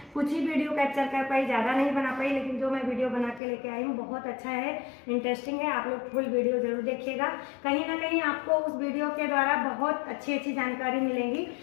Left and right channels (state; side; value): drops out; right; at 3.4 s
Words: कुछ ही वीडियो कैप्चर कर पाई, ज़्यादा नहीं बना पाई, लेकिन जो मैं वीडियो बना के लेके आई हूँ बहुत अच्छा है, इंटरेस्टिंग है। आप लोग फुल वीडियो ज़रूर देखिएगा। कहीं ना कहीं आपको उस वीडियो के द्वारा बहुत अच्छी अच्छी जानकारी मिलेंगी।